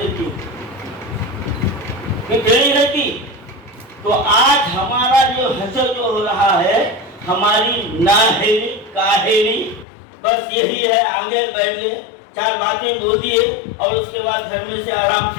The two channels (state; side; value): drops out; right; at 9.9 s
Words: टेढ़ी रहती। तो आज हमारा जो हसर जो हो रहा है, हमारी नाहेली काहेली बस यही है, आगे बैठे 4 बातें बोल दिए और उसके बाद घर में से आराम